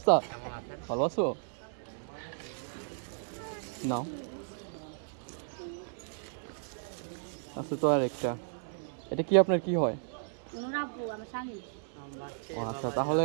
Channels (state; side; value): silent; left; 55 dB below the other